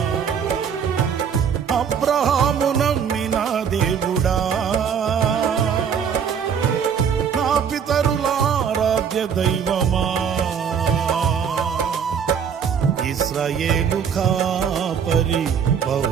అబ్రహాము నమ్మిన దేవుడా, నా పితరుల ఆరాధ్య దైవమా. ఇశ్రాయేలు కాపరి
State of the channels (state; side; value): quieter; left; 7.3 dB